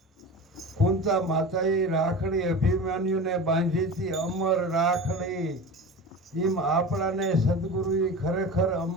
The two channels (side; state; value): both; normal; correlation 0.32